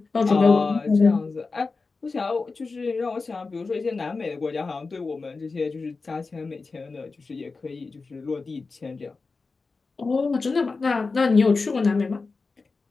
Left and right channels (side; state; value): right; quieter; 4.1 dB